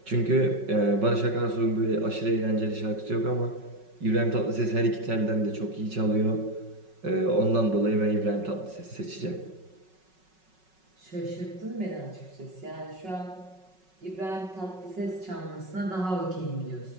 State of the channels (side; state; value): left; late; 5.4 ms